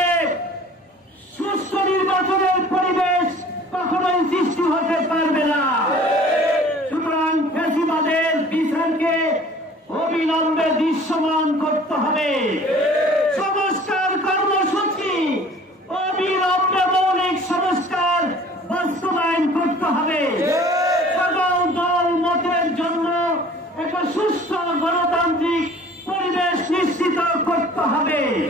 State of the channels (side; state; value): both; normal; correlation 0.49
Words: সুষ্ঠু নির্বাচনের পরিবেশ কখনোই সৃষ্টি হতে পারবে না। সুতরাং ফ্যাসিবাদের বিচারকে অবিলম্বে দৃশ্যমান করতে হবে। সংস্কার কর্মসূচি অবিলম্বে মৌলিক সংস্কার বাস্তবায়ন করতে হবে। সকল দল মতের জন্য একটা সুস্থ গণতান্ত্রিক পরিবেশ নিশ্চিত করতে হবে।